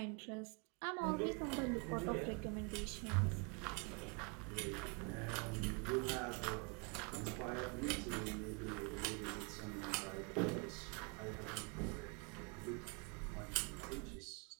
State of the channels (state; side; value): quieter; left; 33.8 dB